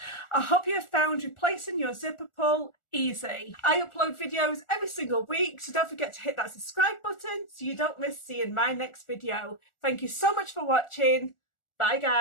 I hope you have found replacing your zipper pull easy. I upload videos every single week, so don't forget to hit that subscribe button so you don't miss seeing my next video. Thank you so much for watching. Bye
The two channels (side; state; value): right; late; 1.4 ms